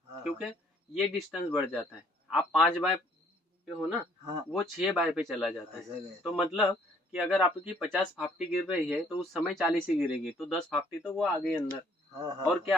क्योंकि ये डिस्टेंस बढ़ जाता है। आप 5 बाय पे हो ना, वो 6 बाय पे चला जाता है। तो मतलब कि अगर आपकी 50 फाफ्टी गिर रही है तो उस समय 40 ही गिरेगी, तो 10 फाफ्टी तो वो आ गई अंदर, और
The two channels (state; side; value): normal; both; correlation 0.62